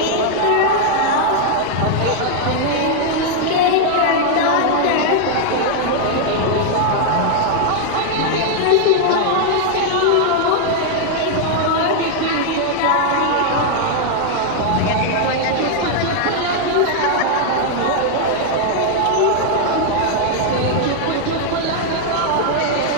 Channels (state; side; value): different; both; correlation 0.00